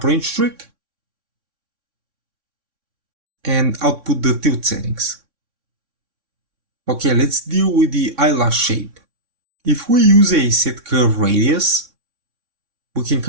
range trick and output the tilt settings. Okay, let's deal with the eyelash shape. If we use a set curve radius, we can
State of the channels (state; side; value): late; left; 3.6 ms